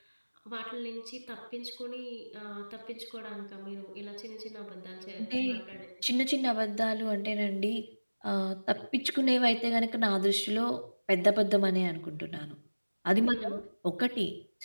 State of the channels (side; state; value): both; inverted; correlation -1.00